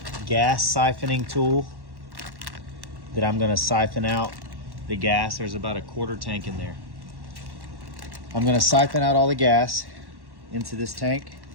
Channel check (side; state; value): left; late; 1.1 ms